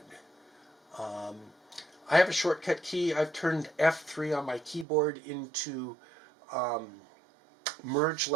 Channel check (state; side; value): drops out; left; at 4.9 s